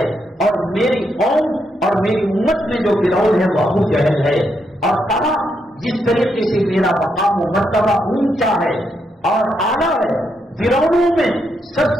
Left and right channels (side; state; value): both; normal; correlation 0.80